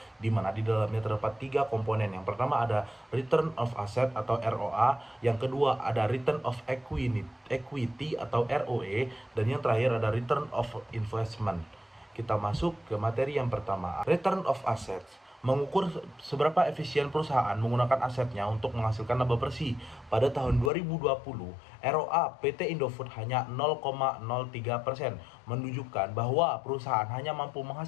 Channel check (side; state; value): right; drops out; at 20.7 s